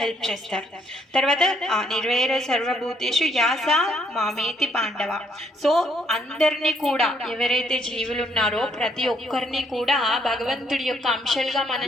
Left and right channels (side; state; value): both; normal; correlation 0.70